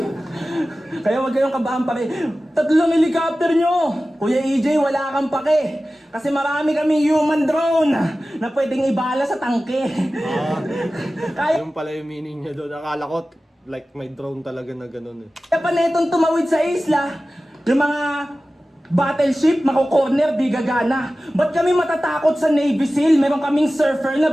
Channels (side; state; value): both; normal; correlation 0.96